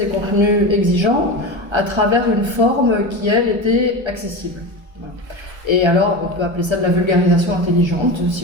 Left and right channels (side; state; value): left; late; 1.3 ms